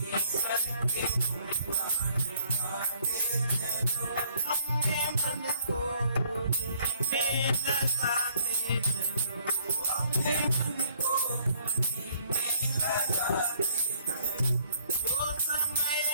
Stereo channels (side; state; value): both; inverted; correlation -0.62